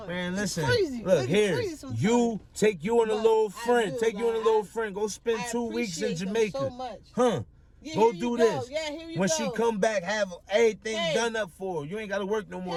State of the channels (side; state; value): both; identical; correlation 1.00